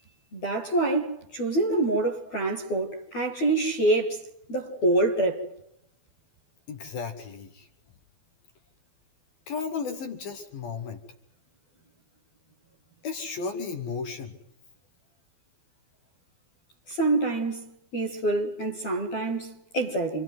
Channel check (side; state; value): right; late; 12 ms